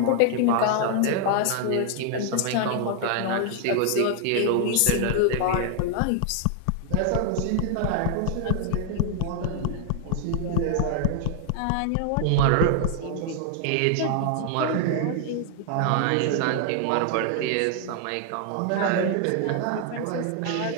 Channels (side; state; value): both; different; correlation 0.00